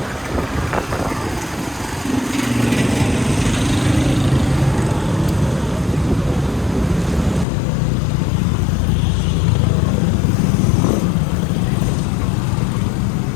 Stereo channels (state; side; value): drops out; right; at 7.5 s